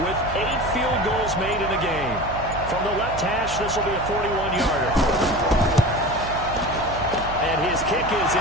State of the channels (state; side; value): noise; right; hum, 10 dB below the sound